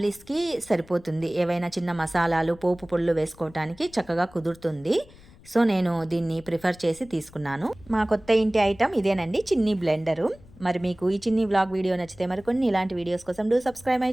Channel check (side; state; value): left; noise; rumble, 24 dB below the sound